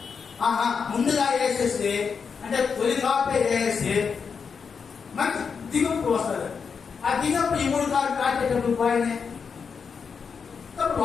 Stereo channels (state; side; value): quieter; right; 5.9 dB